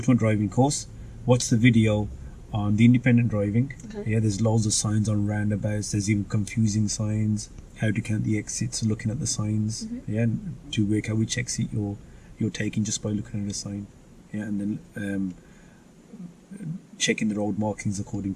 driving course, watch the video on the independent driving. Okay. Yeah, there's loads of signs on roundabouts. There's even confusing signs, how to count the exits, looking at the signs. Yeah, to work out which exit you're taking just by looking at the sign. Yeah, and then checking the road markings according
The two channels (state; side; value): identical; both; correlation 1.00